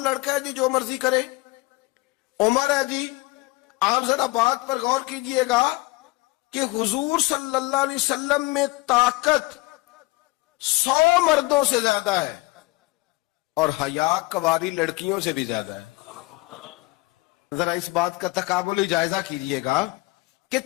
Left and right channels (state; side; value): quieter; right; 22.5 dB